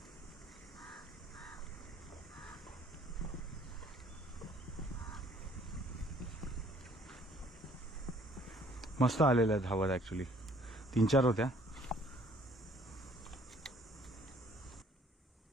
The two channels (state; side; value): normal; both; correlation 0.58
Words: मस्त आलेल्या आहेत धावत, ॲक्च्युली 3-4 होत्या.